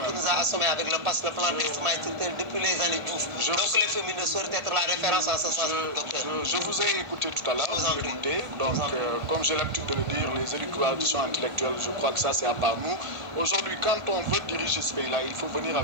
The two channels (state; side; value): late; left; 1.5 ms